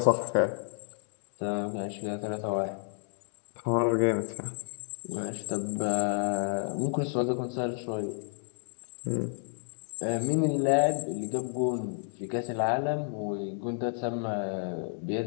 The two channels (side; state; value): right; silent; digital silence